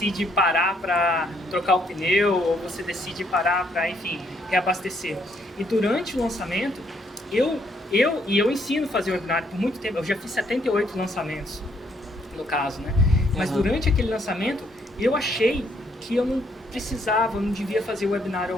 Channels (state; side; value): normal; both; correlation 0.70